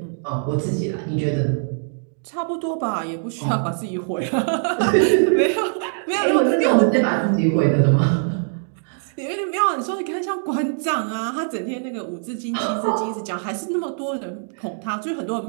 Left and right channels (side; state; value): left; silent; digital silence